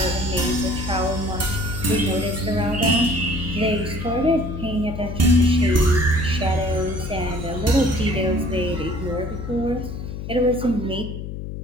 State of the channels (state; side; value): noise; left; hum, 7 dB below the sound